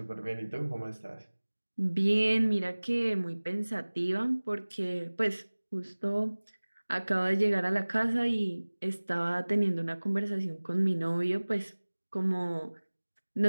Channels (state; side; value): inverted; both; correlation -1.00